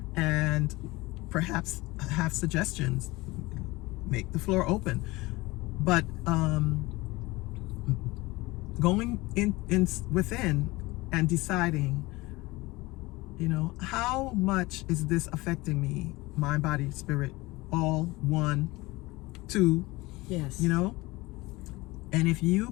and perhaps have suggestions. Make the floor open. But going in within and deciding, how much is this affecting me, mind, body, spirit, all, 1, 2. Yes. And if you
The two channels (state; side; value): quieter; right; 21.4 dB